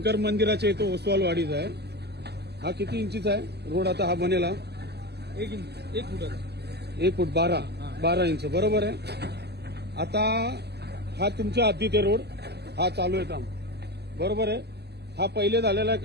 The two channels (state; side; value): late; left; 0.48 ms